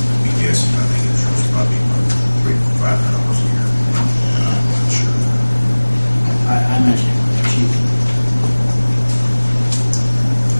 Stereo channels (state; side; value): inverted; both; correlation -1.00